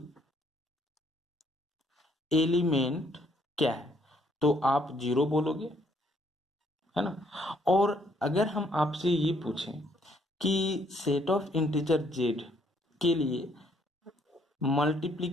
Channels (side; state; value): both; normal; correlation 0.68